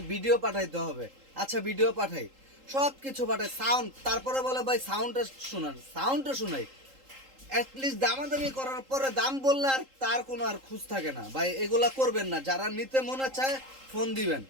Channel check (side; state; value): left; late; 3.8 ms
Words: ভিডিও পাঠাইতে হবে। আচ্ছা ভিডিও পাঠাই, সব কিছু পাঠাই, সাউন্ড, তারপরে বলে ভাই সাউন্ডটা শোনাই। অ্যাটলিস্ট দামাদামি করার পরে দাম বললে আর তার কোনো আর খুঁজ থাকে না ভাই। এগুলা করবেন না। যারা নিতে মনে চায়